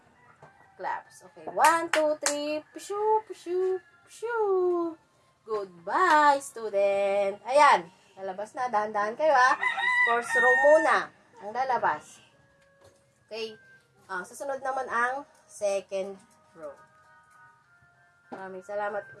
claps. Okay, 1, 2, 3, pshu, pshu, pshu. Goodbye, student. Ayan, lalabas na, dahan-dahan kayo First row muna ang lalabas. Okay, susunod naman ang second row. Maraming salamat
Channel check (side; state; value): both; identical; correlation 1.00